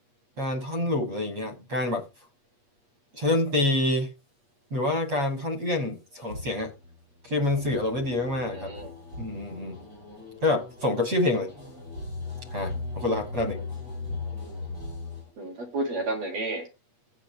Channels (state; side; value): late; left; 8.4 ms